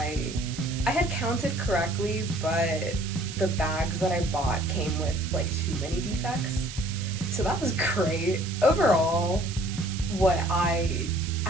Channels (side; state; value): right; noise; hiss, 12 dB below the sound